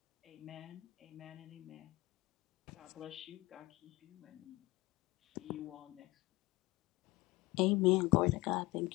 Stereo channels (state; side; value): quieter; right; 21.3 dB